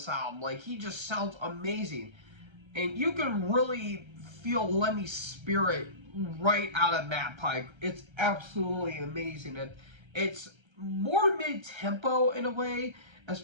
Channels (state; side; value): late; left; 1.3 ms